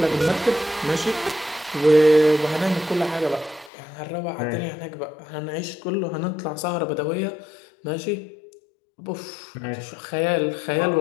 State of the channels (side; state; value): right; drops out; at 3.7 s